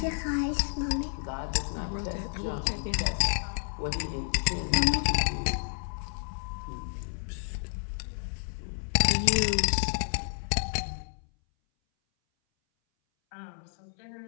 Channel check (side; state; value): right; silent; 58 dB below the other